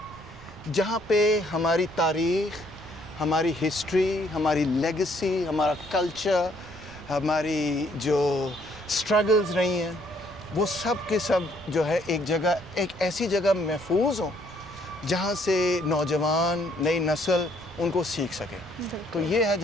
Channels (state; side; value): noise; right; rumble, 21 dB below the sound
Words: جہاں پہ ہماری تاریخ, ہماری ہسٹری, ہماری لیگسی, ہمارا کلچر, ہماری جو سٹرگلز رہی ہیں وہ سب کے سب جو ہے ایک جگہ, ایک ایسی جگہ محفوظ ہوں جہاں سے نوجوان, نئی نسل ان کو سیکھ سکے. تو یہ ہے